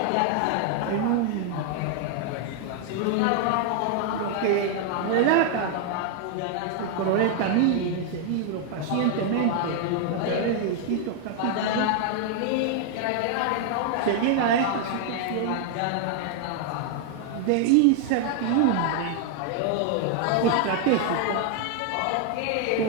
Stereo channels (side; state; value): both; different; correlation 0.00